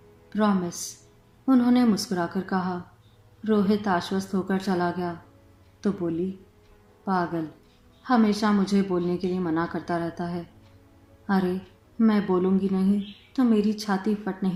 प्रॉमिस, उन्होंने मुस्कुराकर कहा। रोहित आश्वस्त होकर चला गया तो बोली, पागल, हमेशा मुझे बोलने के लिए मना करता रहता है। अरे, मैं बोलूँगी नहीं तो मेरी छाती फट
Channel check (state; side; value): identical; both; correlation 1.00